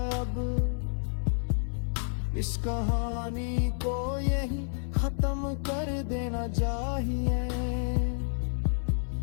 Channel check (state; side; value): silent; right; 58 dB below the other